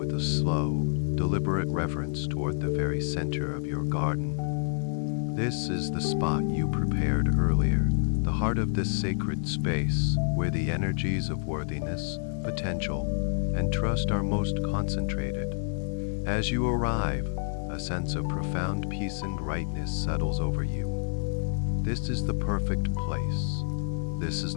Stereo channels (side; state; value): right; silent; digital silence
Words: a slow, deliberate reverence toward the very center of your garden. This is the spot you prepared earlier, the heart of this sacred space, where the energies of worthiness, potential, and trust are most concentrated. As you arrive, a sense of profound peace and rightness settles over you. This is the perfect place. This is